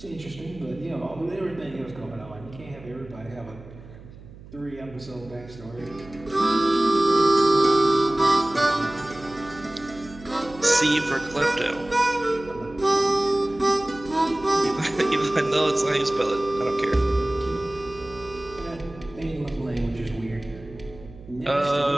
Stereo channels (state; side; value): noise; right; hum, 18 dB below the sound